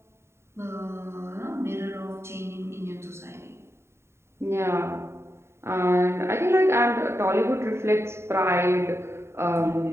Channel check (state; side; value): late; left; 0.13 ms